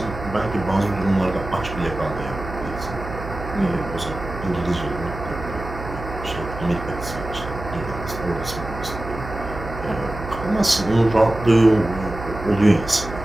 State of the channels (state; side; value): noise; right; hum, 10 dB below the sound